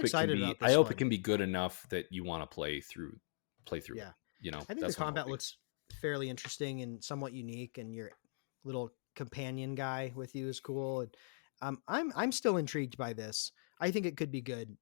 it can excited be. about I this hope it one. can be good enough that you want to play through it. Yeah. I think the That's what I'm combat hoping. looks fairly interesting and somewhat unique, and your little companion guy with you is cool. And I'm still intrigued by this. I think it could be good,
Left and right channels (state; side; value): silent; right; digital silence